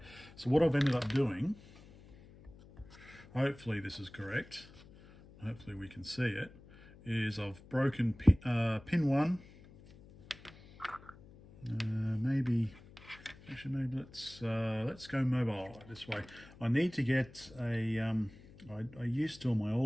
so what I've ended up doing, hopefully this is correct, hopefully we can see it, is I've broken pin 1. Maybe let's go mobile this way. I need to get a I used to, on my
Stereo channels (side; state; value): left; noise; hum, 21 dB below the sound